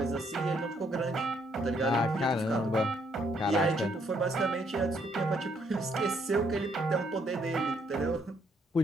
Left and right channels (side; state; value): both; normal; correlation 0.71